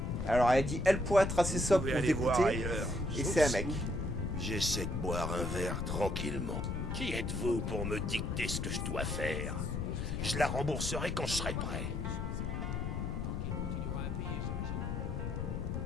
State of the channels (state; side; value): noise; left; rumble, 2 dB below the sound